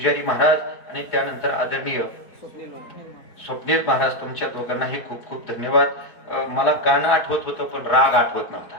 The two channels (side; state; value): right; late; 4.5 ms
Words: महाराज आणि त्यानंतर आदरणीय स्वप्नील महाराज, तुमच्या दोघांनाही खूप खूप धन्यवाद. मला गाणं आठवत होतं पण राग आठवत नव्हता.